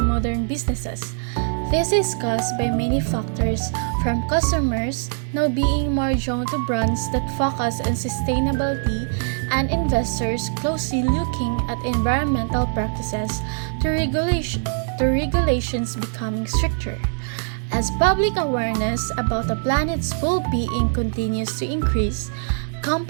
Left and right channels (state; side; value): silent; left; 64 dB below the other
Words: businesses. This is caused by many factors, from customers now being more drawn to brands that focus on sustainability and investors closely looking at environmental practices to regulations becoming stricter. As public awareness about the planet's well-being continues to increase,